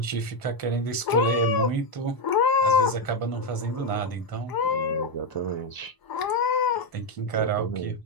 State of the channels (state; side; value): late; right; 1.0 ms